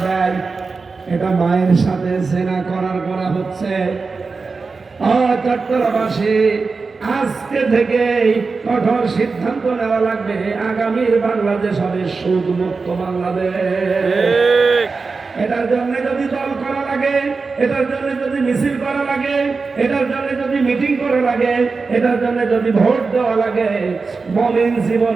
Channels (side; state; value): left; quieter; 4.4 dB